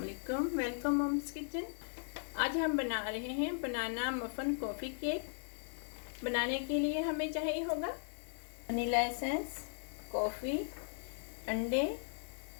Welcome mom's kitchen. आज हम बना रहे हैं बनाना मफ़न कॉफ़ी केक। बनाने के लिए हमें चाहिए होगा वनीला एसेंस, कॉफ़ी, अंडे,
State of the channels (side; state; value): right; silent; digital silence